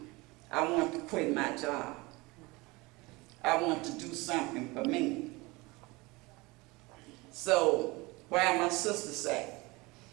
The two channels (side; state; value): left; quieter; 23.7 dB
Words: I want to quit my job. I want to do something for me. So, while my sister said,